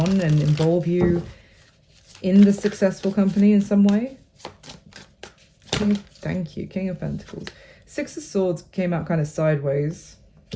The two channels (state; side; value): identical; both; correlation 1.00